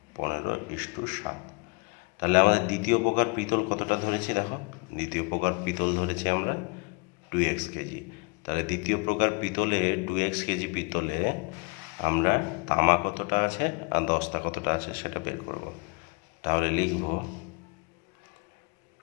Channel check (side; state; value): right; quieter; 31.7 dB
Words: 15:7। তাহলে আমাদের দ্বিতীয় প্রকার পিতল কতটা ধরেছি দেখো, দ্বিতীয় প্রকার পিতল ধরেছি আমরা 2x কেজি। তাহলে দ্বিতীয় প্রকার পিতলে 2x কেজি পিতলে আমরা তামা কতটা আছে আর দস্তা কতটা আছে সেটা বের করব। তাহলে লিখব